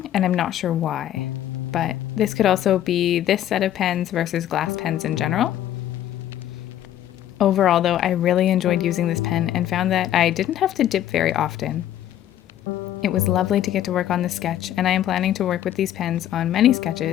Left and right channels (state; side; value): quieter; right; 11.8 dB